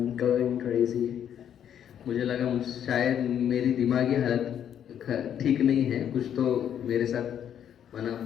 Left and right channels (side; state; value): right; quieter; 9.4 dB